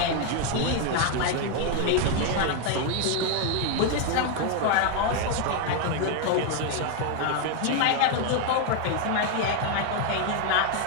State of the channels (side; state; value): both; different; correlation 0.01